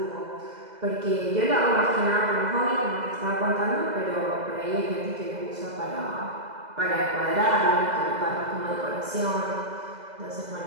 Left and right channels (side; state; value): left; late; 2.0 ms